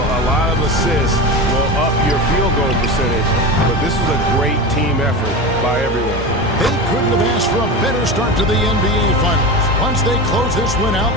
lot of assists will up your field goal percentage, but this was a great team effort by everyone. They couldn't have asked for a better start to the NBA Finals. Once they close this win out,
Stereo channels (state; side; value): normal; both; correlation 0.24